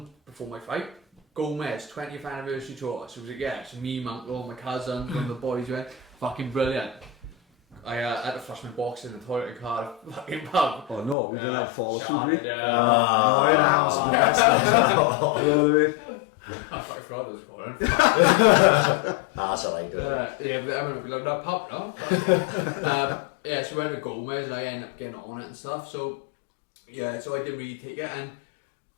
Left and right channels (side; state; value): right; drops out; at 11.2 s